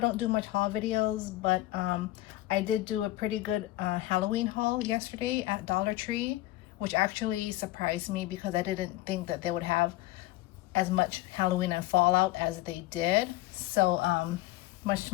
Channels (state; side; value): quieter; right; 17.0 dB